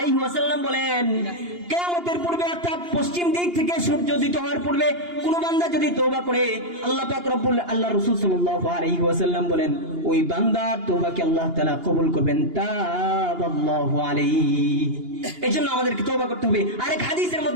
ওয়াসাল্লাম বলেন, কিয়ামতের পূর্বে অর্থাৎ পশ্চিম দিক থেকে সূর্য উদিত হওয়ার পূর্বে কোন বান্দা যদি তওবা করে, আল্লাহ রাসূল সাল্লাল্লাহু আলাইহি ওয়াসাল্লাম বলেন ওই বান্দার তওবাকে আল্লাহ তাআলা কবুল করবেন, তাবাল্লাহু আলাইহি। এজন্য আমাদেরকে তওবা করতে হবে। আরেক হাদিসের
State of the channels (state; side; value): late; left; 2.8 ms